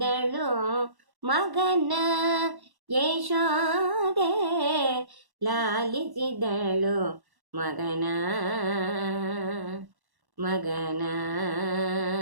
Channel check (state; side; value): late; left; 1.1 ms